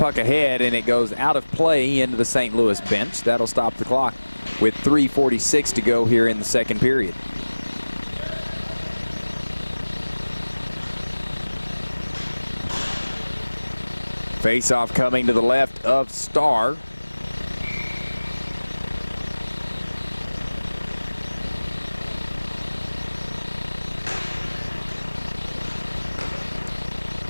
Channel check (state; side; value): inverted; both; correlation -1.00